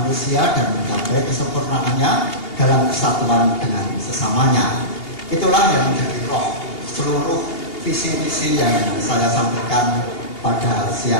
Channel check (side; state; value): right; late; 2.8 ms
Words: dan mencapai kesempurnaannya dalam kesatuan dengan sesamanya. Itulah yang menjadi roh seluruh visi misi yang saya sampaikan pada